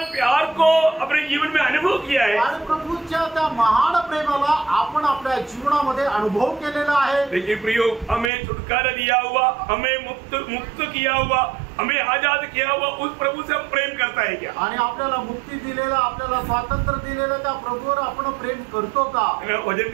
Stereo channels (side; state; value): left; drops out; at 8.3 s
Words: प्यार को अपने जीवन में अनुभव किया है। आणि प्रभूच्या त्या महान प्रेमाला आपण आपल्या जीवनामध्ये अनुभव केलेला आहे। लेकिन प्रियो, हमें छुटकारा दिया हुआ, हमें मुक्त किया हुआ, हमें आजाद किया हुआ उस प्रभु से हम प्रेम करता है क्या? आणि आपल्याला मुक्ती दिलेला, आपल्याला स्वातंत्र्य दिलेलं त्या प्रभूवर आपण प्रेम करतो का? वचन